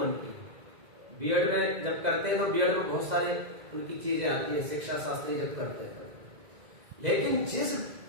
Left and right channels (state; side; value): late; left; 2.0 ms